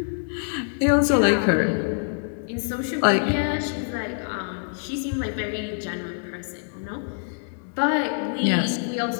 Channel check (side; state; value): right; silent; digital silence